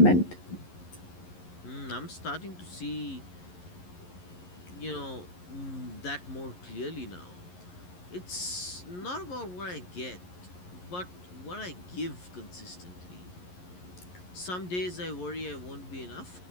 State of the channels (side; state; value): right; late; 11 ms